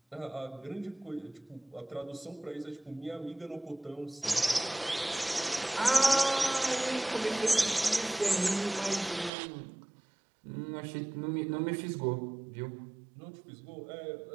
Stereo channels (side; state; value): left; drops out; at 9.3 s